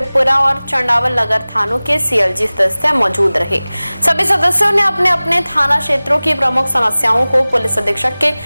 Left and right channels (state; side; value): inverted; both; correlation -0.99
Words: और चंडावल नगर थानों के सीएलजी सदस्य मौजूद रहे। सभी सदस्यों ने अपने अपने थाना क्षेत्रों की प्रमुख समस्याओं को पुलिस अधीक्षक के